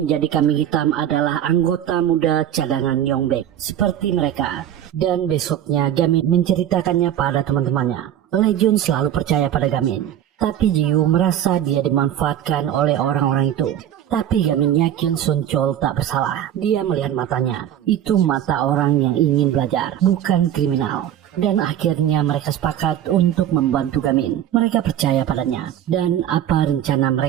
kambing hitam adalah anggota muda cadangan Yongbek seperti mereka. Dan besoknya Gamin menceritakannya pada teman-temannya. Lejun selalu percaya pada Gamin. Tapi Jiwoo merasa dia dimanfaatkan oleh orang-orang itu. Tapi Gamin yakin Sun Chol tak bersalah. Dia melihat matanya. Itu mata orang yang ingin belajar, bukan kriminal. Dan akhirnya mereka sepakat untuk membantu Gamin. Mereka percaya padanya. Dan apa rencana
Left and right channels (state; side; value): quieter; left; 10.8 dB